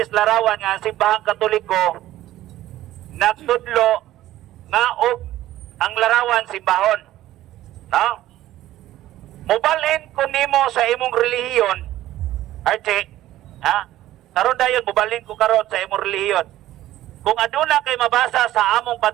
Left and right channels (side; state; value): left; quieter; 14.4 dB